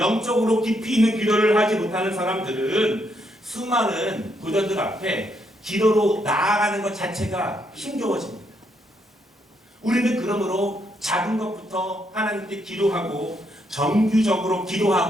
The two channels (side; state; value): both; normal; correlation 0.76